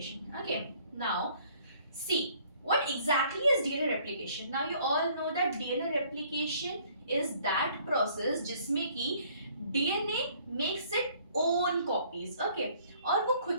Okay, now see what exactly is DNA replication. Now you all know that DNA replication is that process जिसमें कि DNA makes its own copies. Okay, और वो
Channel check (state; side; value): inverted; both; correlation -0.60